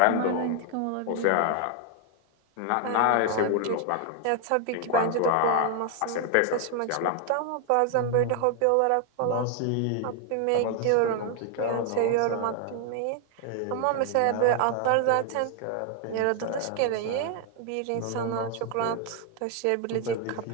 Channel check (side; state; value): both; different; correlation 0.00